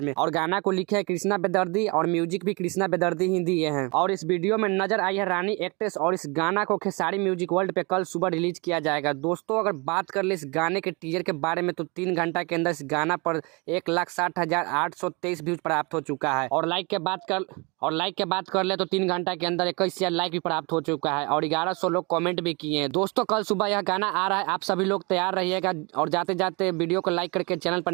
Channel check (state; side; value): quieter; left; 29.1 dB